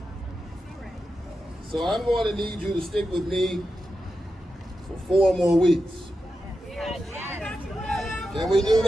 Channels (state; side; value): normal; both; correlation 0.89